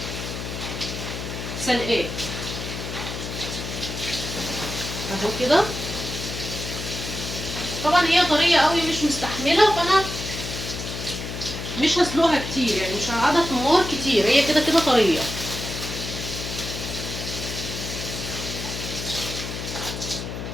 سلقاه اهو كده. طبعا هي طريه قوي مش مستحمله، فانا مش هسلقها كتير، يعني مش هقعدها في النار كتير، هي كده كده طريه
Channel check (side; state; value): left; noise; hum, 6 dB below the sound